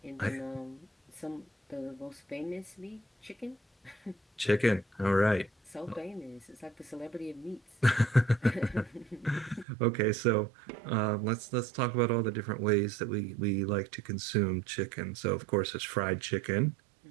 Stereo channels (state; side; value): drops out; left; at 9.7 s